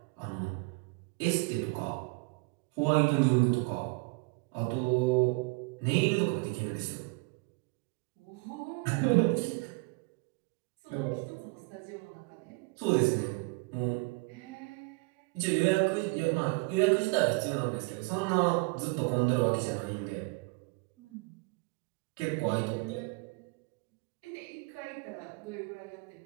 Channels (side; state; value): left; quieter; 28.8 dB